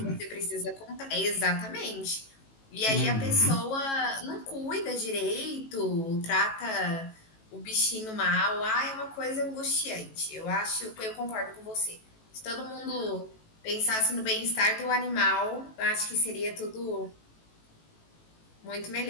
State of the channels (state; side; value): late; right; 18 ms